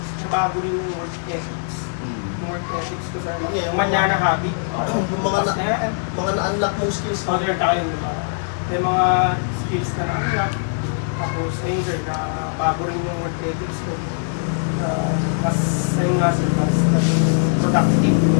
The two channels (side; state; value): right; silent; digital silence